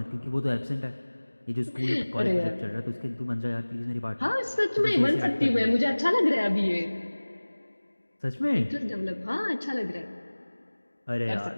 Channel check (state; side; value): inverted; both; correlation -1.00